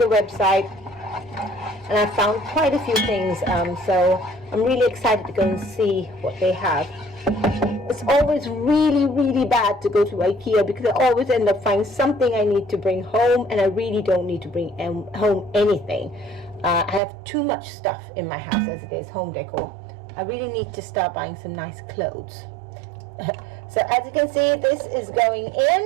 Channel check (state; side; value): drops out; left; at 17.0 s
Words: website, and I found quite a few things, so I'm really excited to go and see what they have. It's always really bad to go to IKEA because I always end up finding something I need to bring home, and I really don't need to bring home anything. I have too much stuff in my house as it is, home decor. I really need to start buying some nice clothes. So as you can see, this is going in.